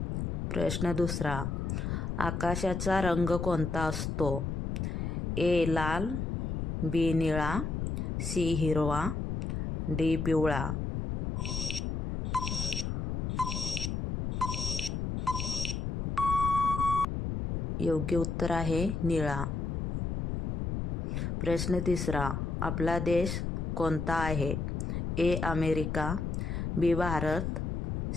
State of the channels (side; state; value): left; noise; rumble, 1 dB below the sound